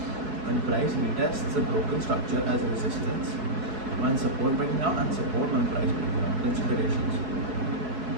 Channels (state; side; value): late; left; 4.7 ms